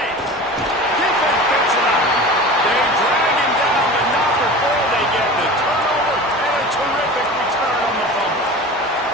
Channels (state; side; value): normal; both; correlation 0.35